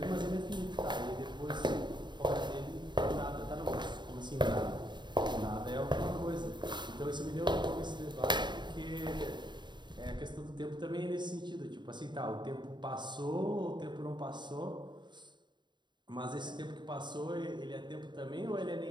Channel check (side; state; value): left; late; 0.22 ms